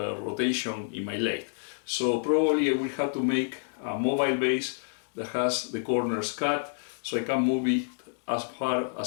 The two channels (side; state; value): right; silent; digital silence